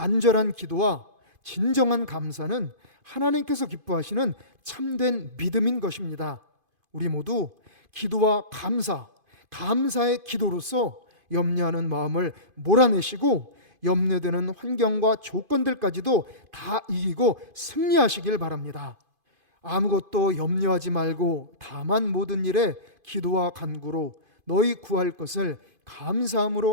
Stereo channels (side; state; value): left; late; 2.5 ms